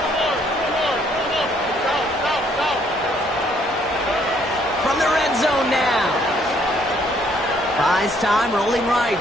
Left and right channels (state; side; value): normal; both; correlation 0.66